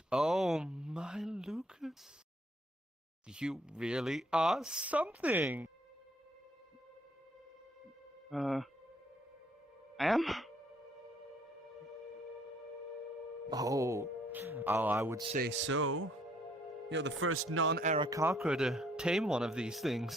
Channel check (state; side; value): normal; both; correlation 0.65